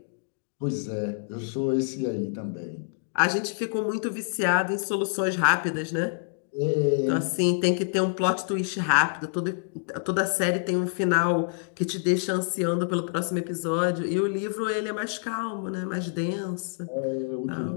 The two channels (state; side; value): silent; right; digital silence